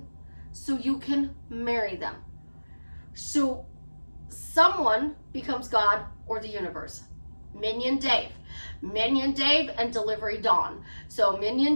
so you can marry them. So someone becomes God or the universe. Minion Dave and Delivery Dawn. So Minion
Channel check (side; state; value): both; inverted; correlation -1.00